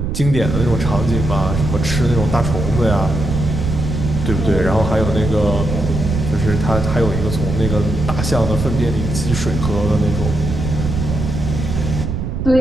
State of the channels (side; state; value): right; noise; rumble, 3 dB below the sound